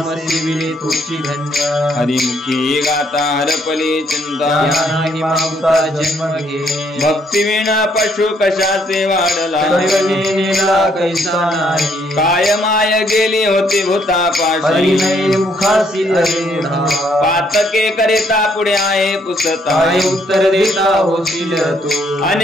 सेविले तोची धन्य हरिमुखी गाता हरपली चिंता त्यानाही मागुता जन्म घे भक्ती विना पशु कशाचे वाढला नेला कैसा नाही काय माय गेली होती भूतापाशी हरिनये मुखासी अरेढा पातके करिता पुढे आहे पुसता काय उत्तर देता होशील तू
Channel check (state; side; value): normal; both; correlation 0.69